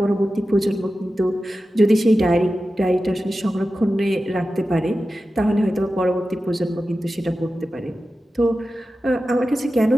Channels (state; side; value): normal; both; correlation 0.93